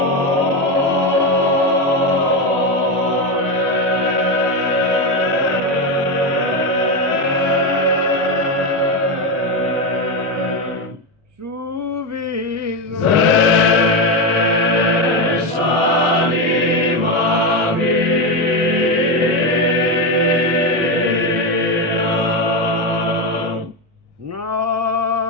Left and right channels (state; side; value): normal; both; correlation 0.12